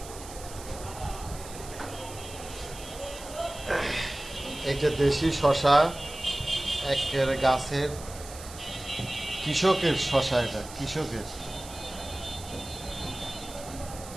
এটা দেশি শশা, একের গাছের কৃষকের শশা, এটা কৃষকের।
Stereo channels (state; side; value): noise; right; hiss, 15 dB below the sound